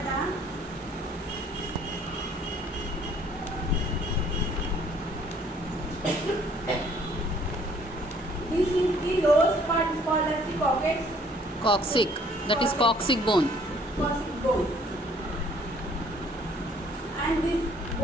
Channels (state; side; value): normal; both; correlation 0.59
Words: This is the lowest part is called as the coccyx. Coccyx. That is coccyx bone. Coccyx bone. And this